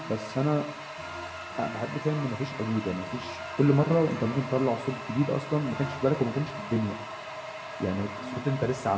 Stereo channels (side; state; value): both; identical; correlation 1.00